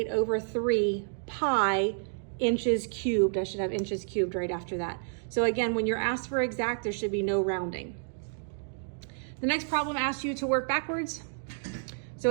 over 3 pi inches cubed. I should have inches cubed right after that. So again, when you're asked for exact, there should be no rounding. The next problem asks you to work backwards. So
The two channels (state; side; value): silent; left; digital silence